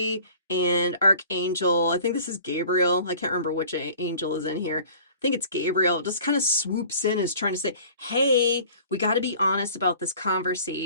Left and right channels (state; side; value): inverted; both; correlation -0.48